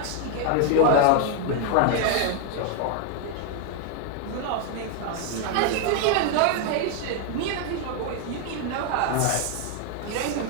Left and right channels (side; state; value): both; different; correlation 0.00